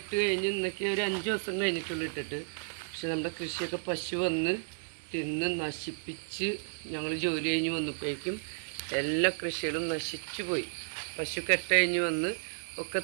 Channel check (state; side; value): silent; left; 56 dB below the other